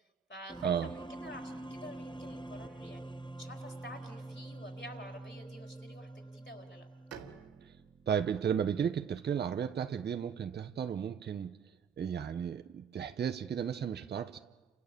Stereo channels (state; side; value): quieter; left; 6.9 dB